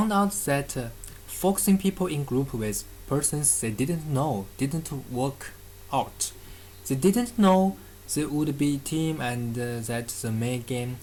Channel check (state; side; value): identical; both; correlation 1.00